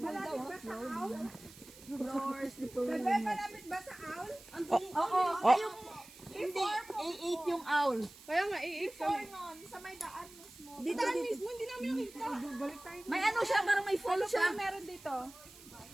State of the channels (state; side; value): noise; right; hiss, 20 dB below the sound